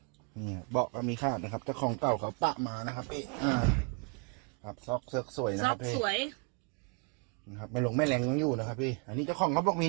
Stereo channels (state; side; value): quieter; left; 36.1 dB